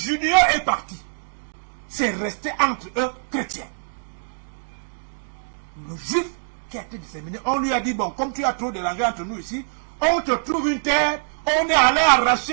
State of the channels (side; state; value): left; silent; digital silence